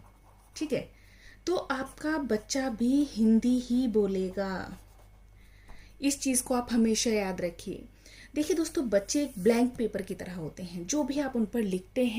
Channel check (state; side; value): identical; both; correlation 1.00